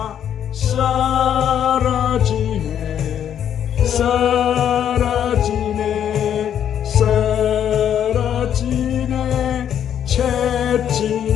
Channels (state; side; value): quieter; right; 9.5 dB